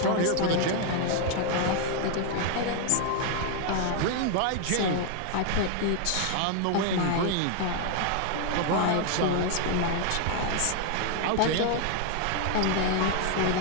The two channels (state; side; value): different; both; correlation 0.00